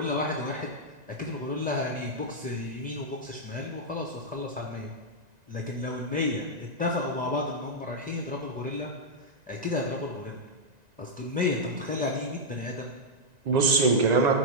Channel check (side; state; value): left; late; 1.9 ms